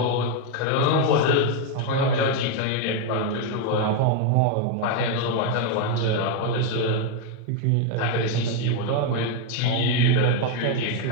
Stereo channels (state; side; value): different; both; correlation 0.01